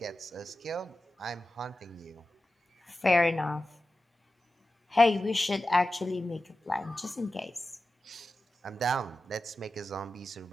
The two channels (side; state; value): both; normal; correlation 0.93